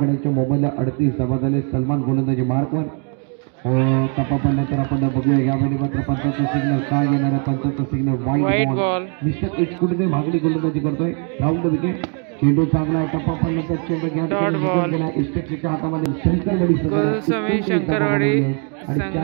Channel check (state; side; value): quieter; left; 40.0 dB